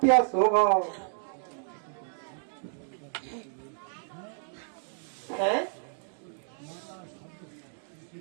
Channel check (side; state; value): left; silent; 57 dB below the other